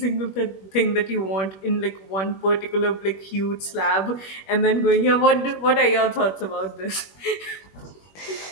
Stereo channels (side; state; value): right; late; 21 ms